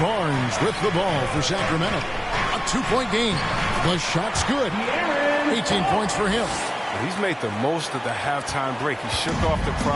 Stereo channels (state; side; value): identical; both; correlation 1.00